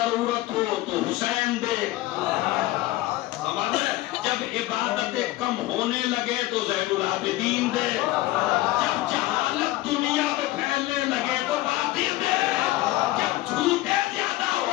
ہو تو حسین دے، جب عبادتیں کم ہونے لگے تو زین العابدین دے، جب جہالت دنیا میں پھیلنے لگے تو باقر دے، جب جھوٹ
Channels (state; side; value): quieter; right; 17.4 dB